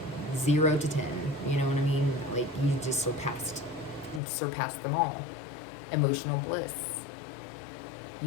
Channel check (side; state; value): right; drops out; at 4.2 s